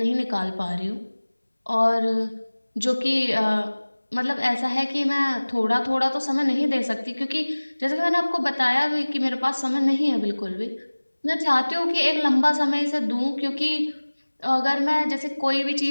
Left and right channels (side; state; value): both; inverted; correlation -1.00